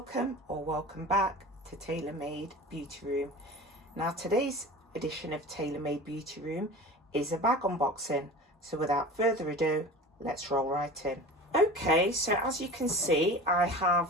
back to Tailor Made Beauty Room. Now today's edition of Tailor Made Beauty Room is a bag unboxing, so without further ado, let's roll right in. Okay, so as you can see, I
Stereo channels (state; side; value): normal; both; correlation 0.36